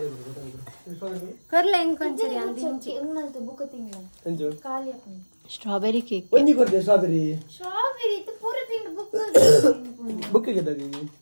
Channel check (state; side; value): inverted; both; correlation -1.00